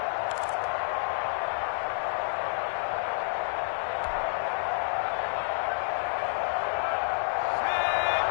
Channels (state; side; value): silent; right; 58 dB below the other